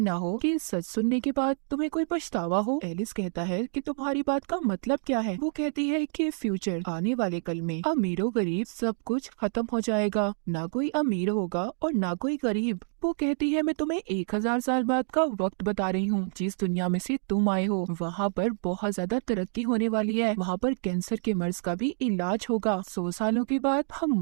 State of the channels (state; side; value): silent; left; 59 dB below the other